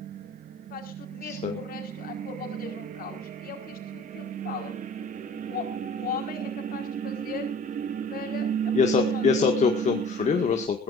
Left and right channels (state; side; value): normal; both; correlation 0.47